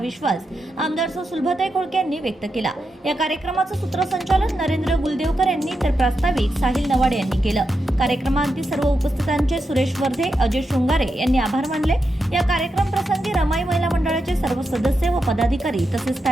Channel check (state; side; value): normal; both; correlation 0.86